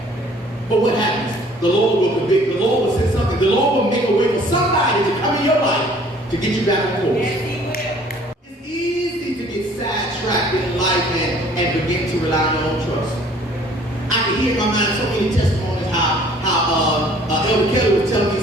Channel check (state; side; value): normal; both; correlation 0.55